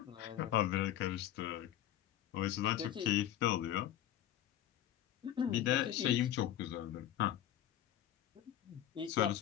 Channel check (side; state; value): right; quieter; 11.7 dB